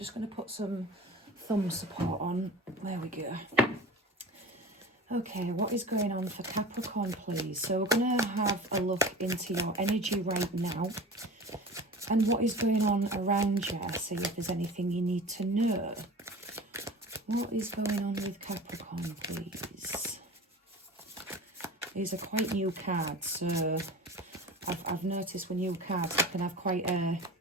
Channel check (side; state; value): both; normal; correlation 0.37